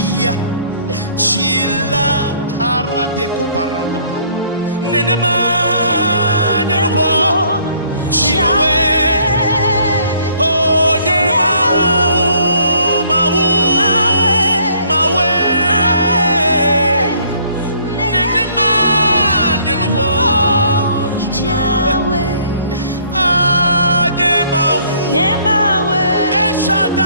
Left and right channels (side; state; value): both; inverted; correlation -0.61